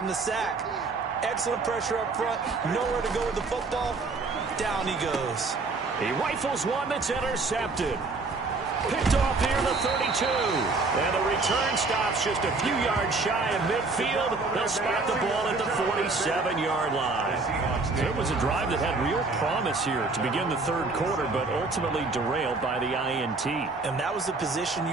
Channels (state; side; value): quieter; left; 3.8 dB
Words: the sack. Excellent pressure up front. Nowhere to go with the football. Down he goes. He rifles one that's intercepted. Picked off near the 32. And the return stops just a few yards shy of midfield. They'll spot the ball at the 47-yard line. It was a drive that had real promise here to begin the third quarter, but ultimately derailed by the INT. And that was the position